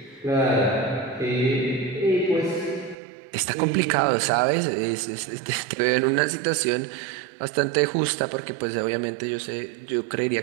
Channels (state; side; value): drops out; left; at 3.0 s